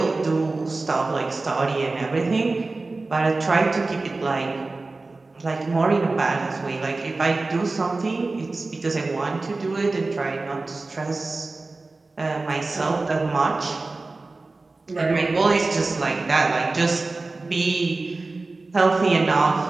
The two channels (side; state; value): left; quieter; 3.4 dB